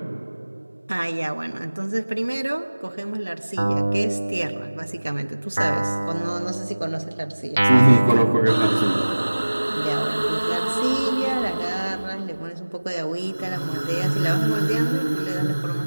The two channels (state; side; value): inverted; both; correlation -1.00